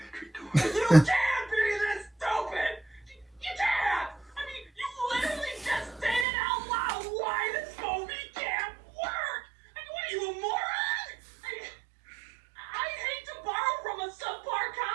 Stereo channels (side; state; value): left; drops out; at 6.2 s